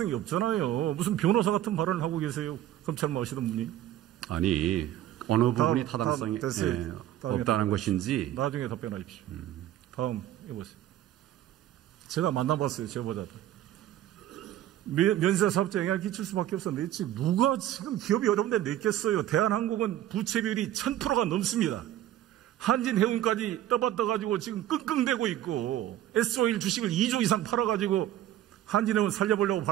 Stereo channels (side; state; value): left; quieter; 12.7 dB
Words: 없잖아요. 무슨 변호사 같은 발언을 하고 계세요. 검찰 나오시던 분이. 아니, 어느 부분이 타당성이 없다는 것인지. 나중에 답변하십시오. 다음 해보세요. 제가 만나봤어요. 제보자들. 면세사업자 영향을 끼칠 수밖에 없어 냈지. 누가 지금 기업이 어려운데 냈겠어요. 대한항공은 부채 비율이 1000%가 넘습니다. 한진해운까지 떠받떠가지고 지금 끙끙대고 있고 S-오일 주식을 2조 이상 팔아가지고 한진해운 살려보려고